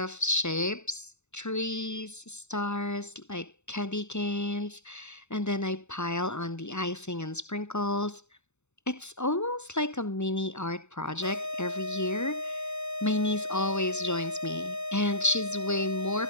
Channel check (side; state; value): right; late; 0.82 ms